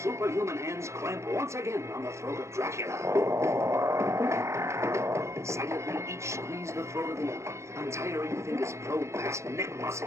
hands clamp once again on the throat of Dracula. Silently, each squeeze the throat of the other. Untiring fingers probe past neck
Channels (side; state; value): left; late; 0.14 ms